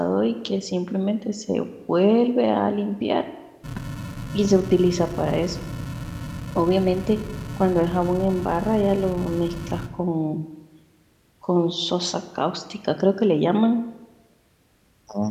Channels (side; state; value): both; identical; correlation 1.00